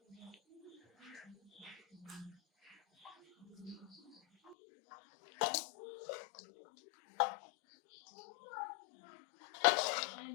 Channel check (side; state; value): right; drops out; at 4.5 s